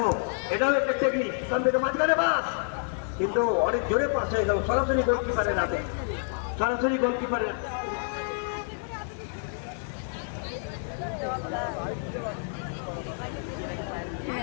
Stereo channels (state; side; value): silent; right; digital silence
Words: এটাও একটা টেকনিক, এখান থেকে মাঝখানে পাস, কিন্তু অনেক জোরে পাস হয়ে গেল, সরাসরি গোলকিপারের হাতে, সরাসরি গোলকিপারের।